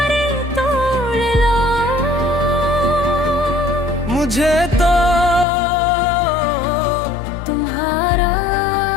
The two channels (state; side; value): drops out; right; at 5.5 s